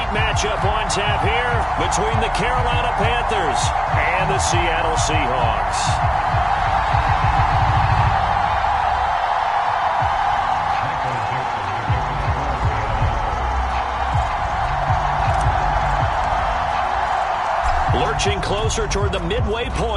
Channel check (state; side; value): identical; both; correlation 1.00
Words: matchup on tap here between the Carolina Panthers and the Seattle Seahawks. Lurching closer toward the midway